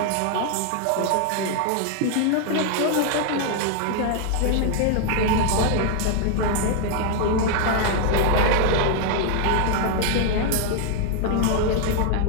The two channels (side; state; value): both; different; correlation 0.00